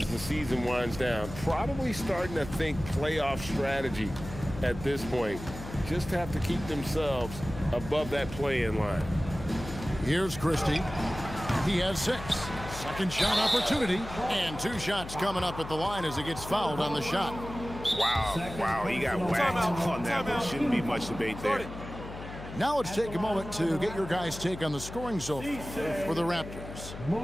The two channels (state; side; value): noise; left; hum, 11 dB below the sound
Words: the season winds down. Probably starting to think playoff strategy at this point. Just have to keep themselves above that play-in line. Here's Christie. He has 6. Second shot opportunity. And 2 shots coming up at the line as he gets fouled on the shot. Wow, he got whacked on that one. Shouldn't be much debate there. Now let's take a moment to get your guys' take on the scoring so far for the Raptors.